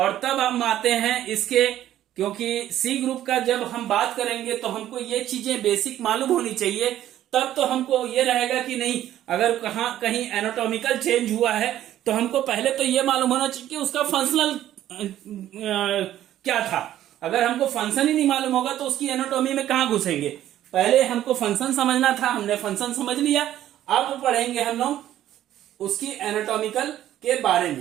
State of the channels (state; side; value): quieter; left; 12.5 dB